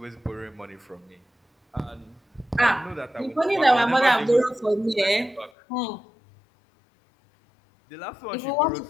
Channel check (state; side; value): drops out; right; at 5.5 s